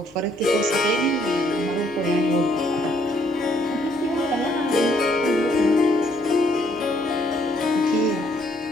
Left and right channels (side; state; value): both; normal; correlation 0.68